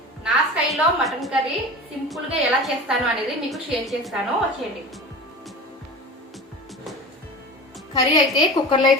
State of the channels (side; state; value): both; normal; correlation 0.33